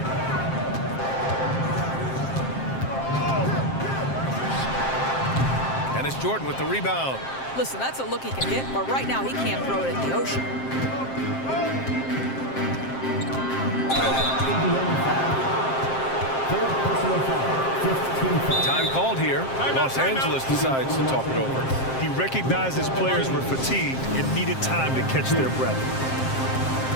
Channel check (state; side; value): late; right; 7.6 ms